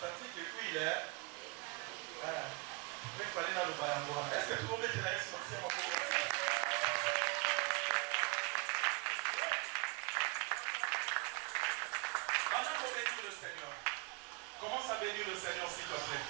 que oui là il fallait na lo bayango wana. Est-ce que tout le monde est là? Merci à vous. Avant qu'on bénisse le Seigneur, commence à bénir le Seigneur s'il te plaît.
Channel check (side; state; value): left; quieter; 29.9 dB